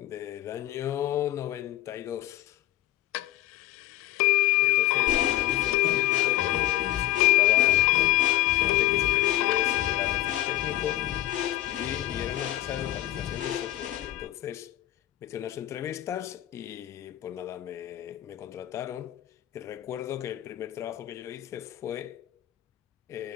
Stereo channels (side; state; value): right; quieter; 14.9 dB